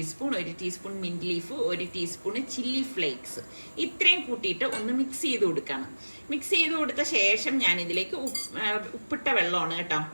mint leaf, 1 teaspoon chilli flakes ഇത്രയും കൂട്ടിയിട്ട് ഒന്ന് മിക്സ് ചെയ്ത് കൊടുക്കണം. മിക്സ് ചെയ്ത് കൊടുത്ത ശേഷം ഞാൻ ഇതിലേക്ക് ഉപ്പിട്ട വെള്ളമാണ് കേട്ടോ,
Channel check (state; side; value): inverted; both; correlation -1.00